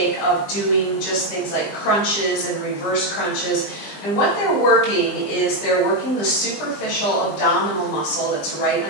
of doing just things like crunches and reverse crunches. And what they're working is they're working the superficial abdominal muscle that's right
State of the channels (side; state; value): right; late; 20 ms